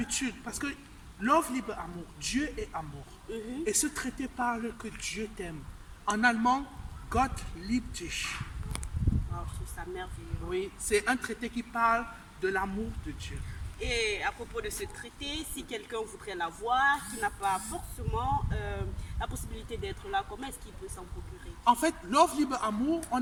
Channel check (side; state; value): both; identical; correlation 1.00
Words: parce que love, libre, amour, Dieu est amour. Et ce traité parle que Dieu t'aime. En allemand, Gott liebt dich. Oh, je trouve ça merveilleux. Oui, c'est un traité qui parle de l'amour de Dieu. Et à propos de ce traité, si quelqu'un voudrait l'avoir, qui n'a pas forcément la possibilité d'être là, comment est-ce qu'il peut s'en procurer? En fait, Love, libre, amour,